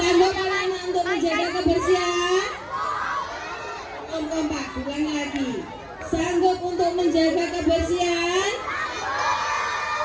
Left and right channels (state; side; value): identical; both; correlation 1.00